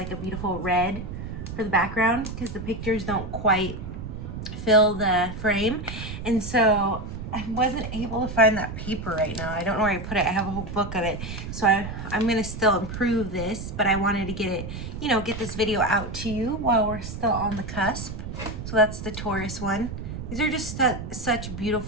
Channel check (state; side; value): noise; right; rumble, 8 dB below the sound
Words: a beautiful red for the background because the pictures don't quite fill the frame, and so I wasn't able to find that paper right now. I don't know where I put it. I have a whole book of it, so I'm gonna still improve this, but I wanted to get it, get this video out to you while we're still on the cusp. So that's the Taurus one. These are just such